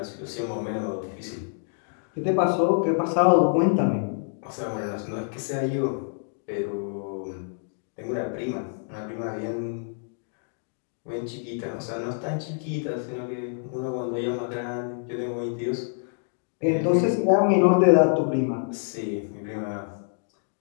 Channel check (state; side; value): silent; right; digital silence